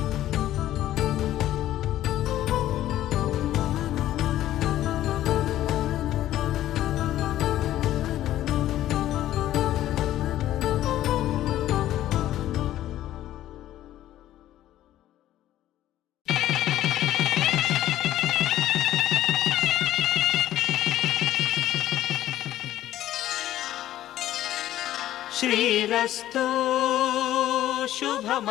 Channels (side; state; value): right; quieter; 13.3 dB